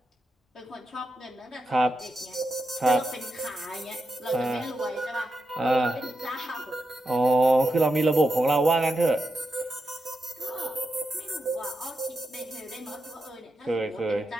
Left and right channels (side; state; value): both; normal; correlation 0.87